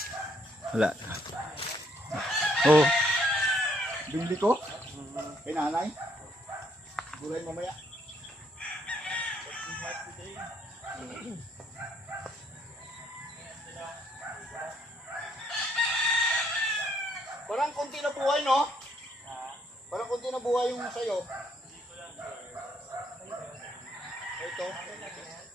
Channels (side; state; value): both; normal; correlation 0.70